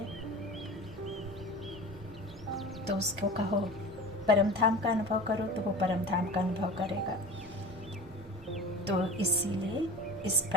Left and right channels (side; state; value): both; normal; correlation 0.36